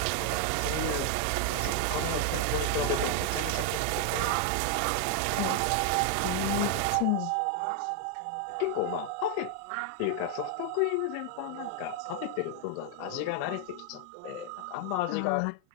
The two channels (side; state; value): both; different; correlation 0.00